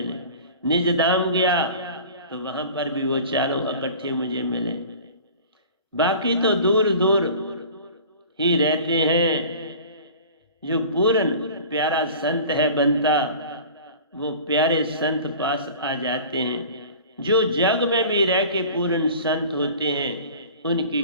निज धाम गया तो वहां पर भी वो 4 इकट्ठे मुझे मिले। बाकी तो दूर दूर ही रहते हैं। जो पूर्ण प्यारा संत है बनता, वो प्यारे संत पास आ जाते हैं। जो जग में भी रह के पूर्ण संत होते हैं, उनकी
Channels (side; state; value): both; inverted; correlation -0.42